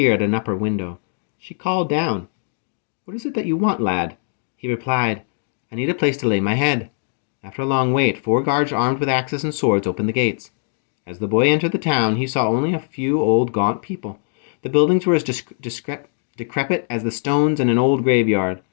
at an upper window. She called down, "What is it that you want, lad?" He replied, "I need a place to lay my head." After a long wait, 4 guards armed with axes and swords opened the gates. As the boy entered the town, he saw only a few old, gaunt people. The buildings were as decrepit as the stones in an old graveyard.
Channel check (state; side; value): silent; right; digital silence